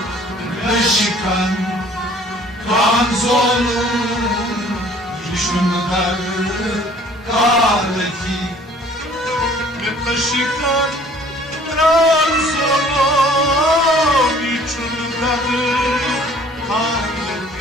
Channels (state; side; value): normal; both; correlation 0.54